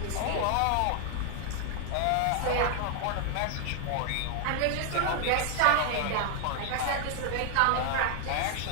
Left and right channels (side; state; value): both; different; correlation 0.00